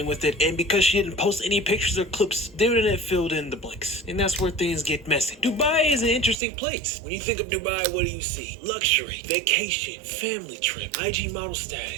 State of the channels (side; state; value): left; drops out; at 6.4 s